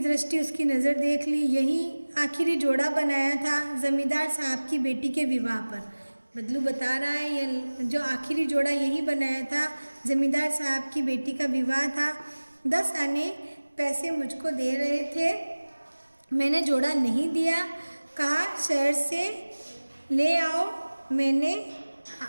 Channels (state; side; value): inverted; both; correlation -1.00